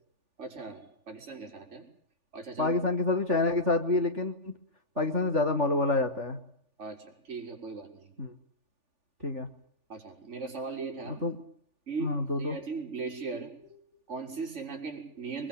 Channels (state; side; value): late; left; 3.4 ms